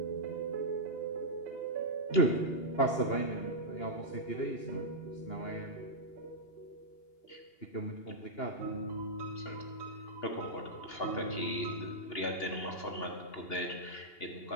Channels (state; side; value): late; right; 2.8 ms